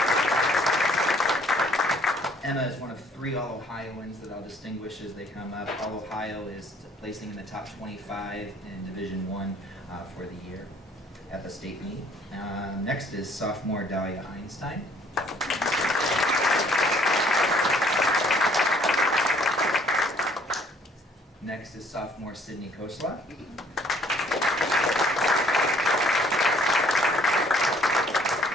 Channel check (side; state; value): both; normal; correlation 0.60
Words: Emma is one of 3 All-Ohioans that I'll distinguish as they come up. All-Ohio is placing in the top 25 in Division I for the year at the state meet. Next is sophomore Dahlia Einstein. Next is sophomore Sydney Kosla.